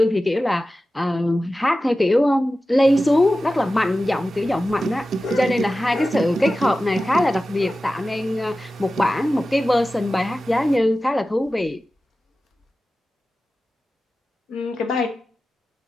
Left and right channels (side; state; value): both; normal; correlation 0.94